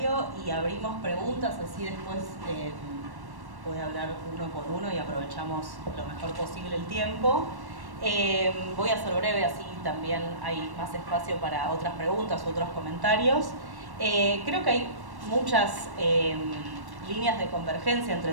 y abrimos preguntas, así después voy a hablar uno por uno y aprovechamos lo mejor posible el tiempo. Voy a ser breve, así también hay más espacio para otras preguntas u otros comentarios. Creo que hay muchas líneas de convergencia entre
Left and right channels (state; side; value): late; left; 1.1 ms